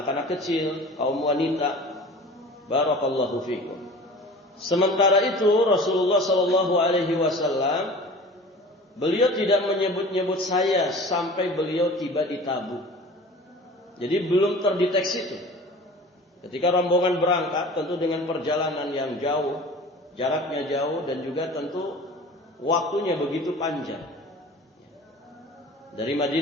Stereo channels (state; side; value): normal; both; correlation 0.41